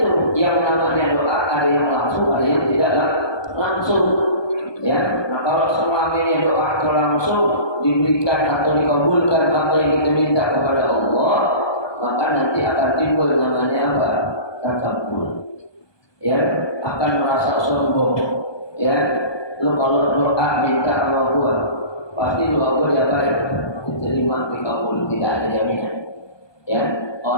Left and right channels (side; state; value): right; late; 1.2 ms